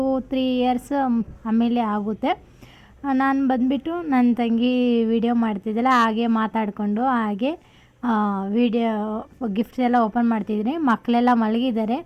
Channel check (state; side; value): identical; both; correlation 1.00